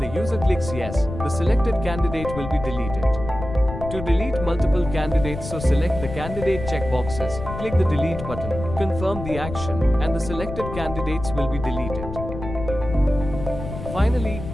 user clicks yes, the selected candidate will be deleted. To delete multiple candidates, so select the candidate checkboxes, click the delete button, confirm the action, and the selected candidates will be deleted. Finally,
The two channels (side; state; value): left; noise; rumble, 9 dB below the sound